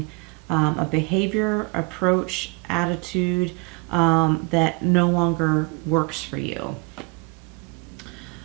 a behavior, approach, attitude that no longer works for you.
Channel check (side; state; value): left; quieter; 32.1 dB